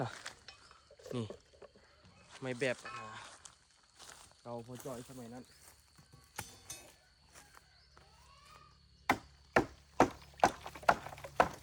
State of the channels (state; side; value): identical; both; correlation 1.00